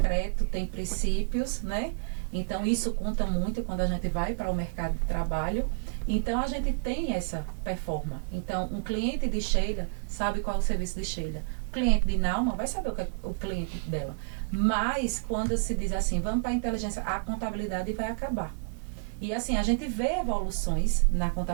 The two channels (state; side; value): quieter; left; 37.6 dB